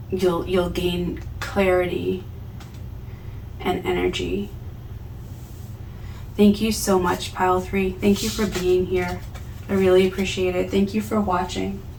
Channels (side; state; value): both; identical; correlation 1.00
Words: you'll gain clarity and energy. Thank you so much, Pile 3. Thank you for being here. I really appreciate it. Thank you for watching.